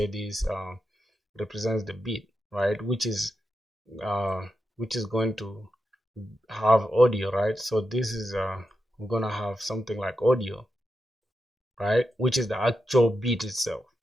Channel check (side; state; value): both; normal; correlation 0.88